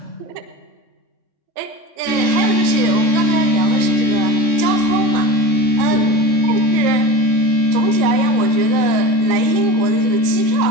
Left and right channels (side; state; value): left; late; 3.6 ms